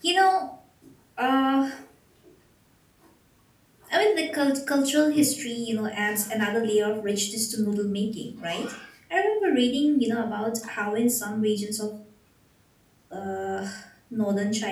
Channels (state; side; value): identical; both; correlation 1.00